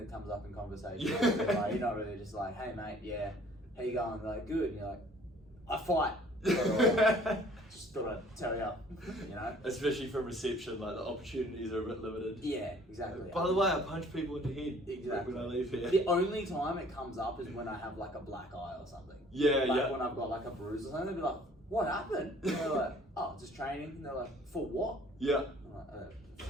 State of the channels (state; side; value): normal; both; correlation 0.55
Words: comes up in conversation. Yeah. You're not really just like, hey mate, yeah, how you going? They're like, good. And you're like, I fight. Just thought I'd tell you, Especially from reception, like the opportunities are a bit limited. Yeah, exactly. By the way, I punch people in the head exactly when I leave here. The only time it comes up is when I have like a black eye or something. Yeah. When I've got like a bruise or something, they'll be like, what happened? And they're like, oh, just training. And they're like, for what? Yeah. I'm like,